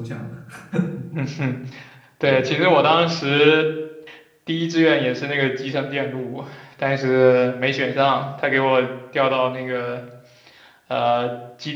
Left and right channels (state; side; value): identical; both; correlation 1.00